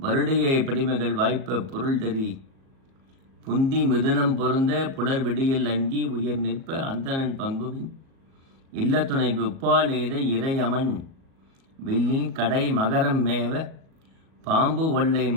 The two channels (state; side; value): late; left; 37 ms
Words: படிமகள் வாய்ப்ப பொருள் தறி புந்தி மிதுனம் பொருந்த புலர் விடியல் அங்கி உயர் நிற்ப அந்தணன் பங்குவின் இல்லத்துணைக்கு உப்பால் எய்த இறையமன் வில்லில் கடை மகரம் மேவ பாம்பு ஒல்லை